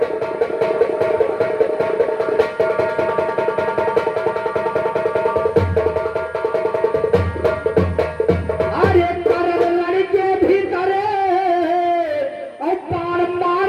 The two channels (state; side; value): identical; both; correlation 1.00